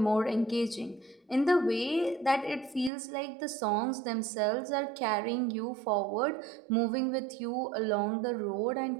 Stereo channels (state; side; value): drops out; left; at 2.9 s